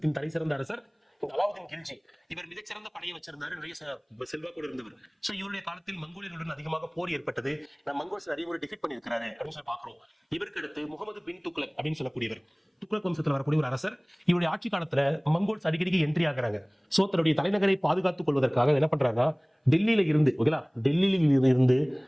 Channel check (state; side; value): identical; both; correlation 1.00